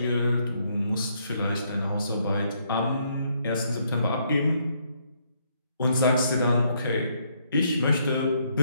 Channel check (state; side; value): inverted; both; correlation -0.72